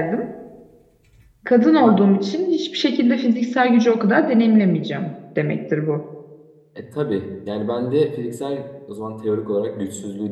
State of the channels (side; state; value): both; identical; correlation 1.00